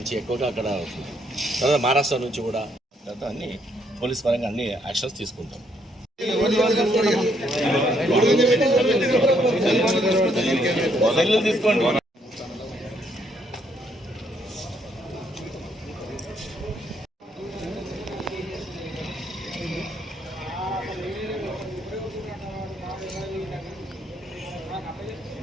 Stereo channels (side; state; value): both; normal; correlation 0.71